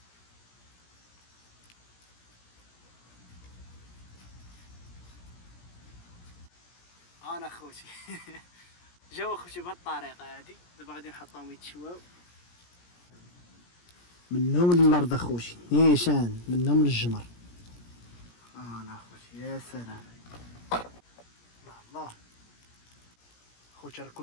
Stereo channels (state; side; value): late; right; 17 ms